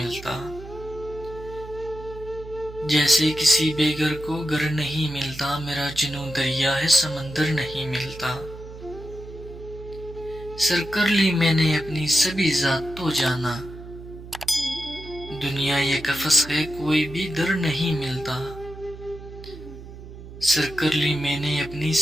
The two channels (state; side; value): noise; right; hum, 14 dB below the sound